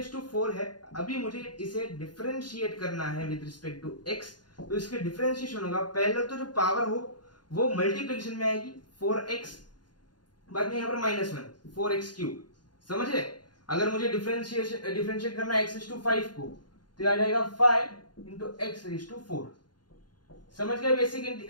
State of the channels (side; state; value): right; late; 0.70 ms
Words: to 4 है, अभी मुझे इसे डिफरेंशिएट करना है विद रिस्पेक्ट टू x, तो इसके डिफरेंशिएशन होगा, पहले तो जो पावर हो वो मल्टीप्लिकेशन में आएगी 4x, बाद में यहाँ पर -1 4x क्यूब। समझे? अगर मुझे डिफरेंशिएट करना है x रेज टू 5 को, तो आ जाएगा 5 इंटू x रेज टू 4। समझ गए